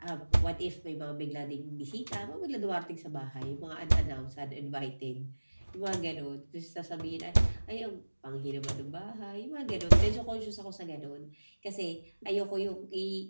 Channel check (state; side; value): inverted; both; correlation -1.00